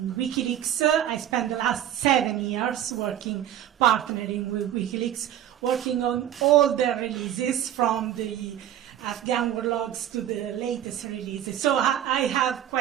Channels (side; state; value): left; quieter; 11.1 dB